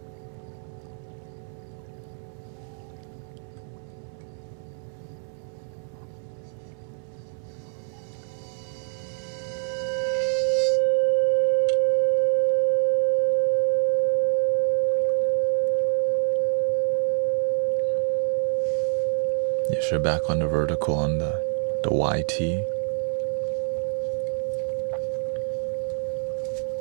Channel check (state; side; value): silent; left; 61 dB below the other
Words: Yes, you're back on the vertical on the YT.